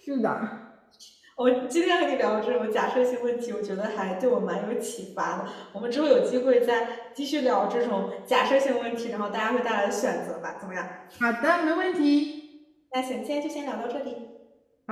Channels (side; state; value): both; identical; correlation 1.00